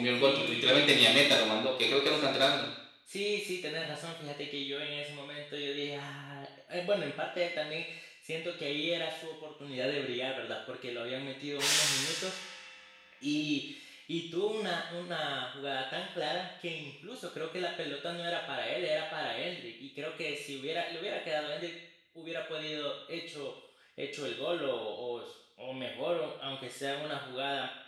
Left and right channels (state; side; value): identical; both; correlation 1.00